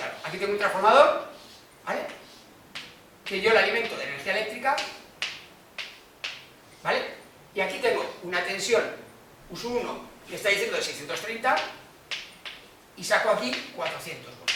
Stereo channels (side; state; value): both; identical; correlation 1.00